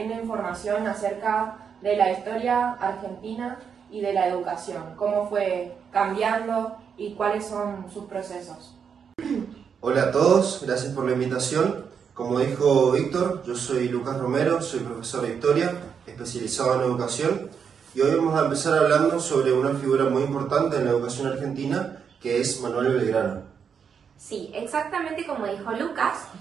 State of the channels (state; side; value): quieter; left; 6.9 dB